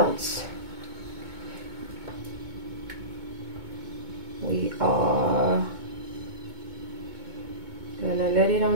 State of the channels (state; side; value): late; left; 2.2 ms